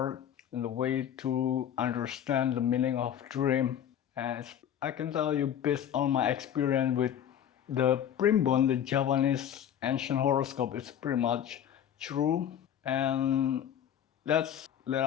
and the way to understand the meaning of dream. And I can tell you based on my experience with the Primbon, the Japanese ancient horoscope, is pretty much true. And that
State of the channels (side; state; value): right; quieter; 9.7 dB